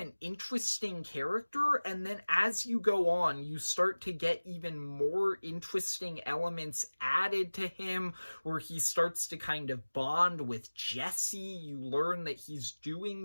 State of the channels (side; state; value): both; inverted; correlation -1.00